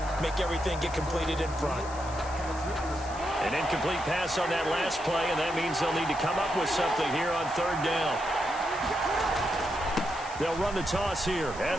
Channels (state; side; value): noise; left; hiss, 16 dB below the sound